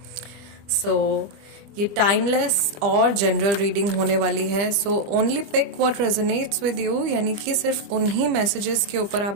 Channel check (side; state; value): left; late; 25 ms